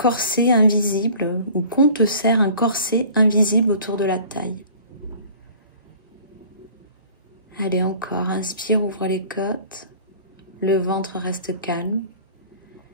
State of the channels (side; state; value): both; inverted; correlation -0.48